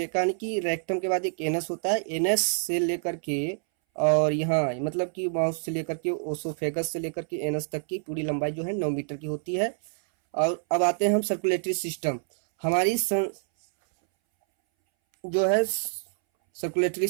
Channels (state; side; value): silent; left; 60 dB below the other